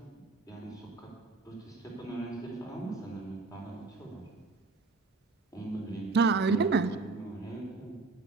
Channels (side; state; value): left; quieter; 3.9 dB